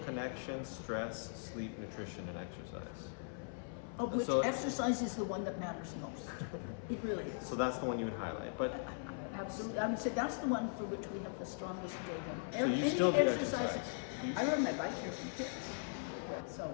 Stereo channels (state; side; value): silent; right; 51 dB below the other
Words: stress, sleep, nutrition, and exercise. Of which So- exercise is the one that matters most. It really is. So that's the one you would highlight. But Absolutely. I would say that's the one for which we have the strongest data. So you Any still do exercise? I rode my bike here from kids. So,